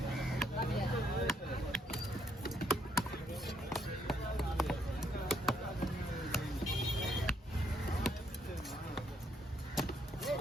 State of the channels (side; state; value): both; normal; correlation 0.70